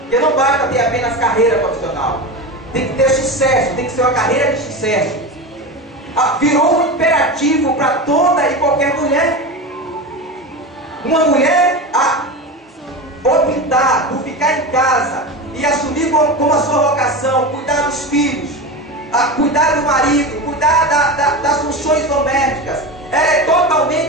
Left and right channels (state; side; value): normal; both; correlation 0.24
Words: Porque não basta ter apenas carreira profissional. Tem que ter sucesso, tem que ser uma carreira de sucesso. Virou um imperativo para toda e qualquer mulher. Uma mulher optar por ficar em casa e assumir como a sua vocação, cuidar dos filhos, cuidar do marido, cuidar das funções domésticas, ela é